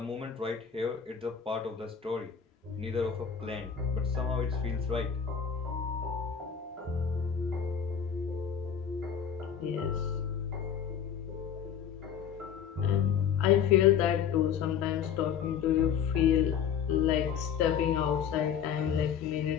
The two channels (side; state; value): right; quieter; 7.9 dB